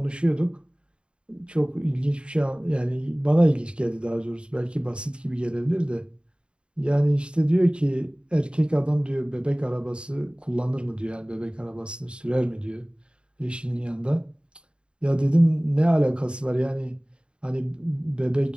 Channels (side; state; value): left; late; 0.053 ms